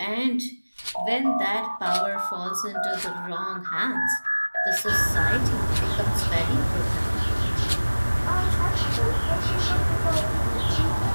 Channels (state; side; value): inverted; both; correlation -1.00